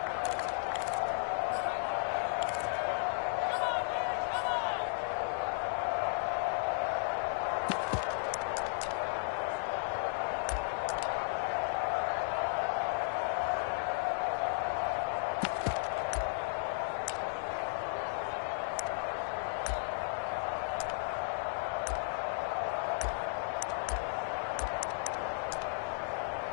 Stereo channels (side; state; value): right; silent; digital silence